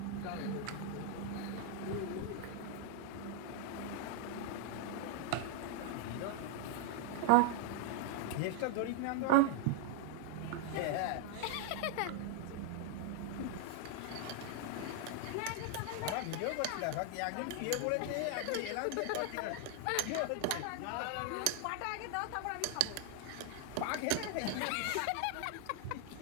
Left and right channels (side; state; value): both; different; correlation 0.00